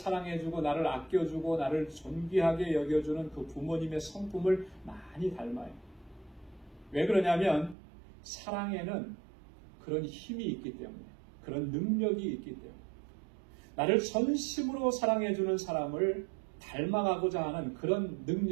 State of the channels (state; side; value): drops out; left; at 7.8 s